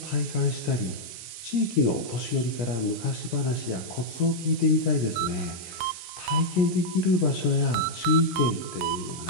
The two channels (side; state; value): right; late; 17 ms